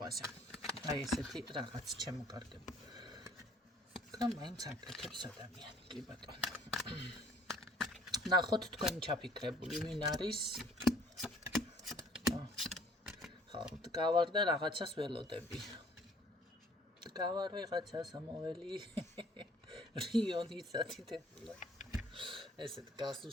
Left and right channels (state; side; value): normal; both; correlation 0.57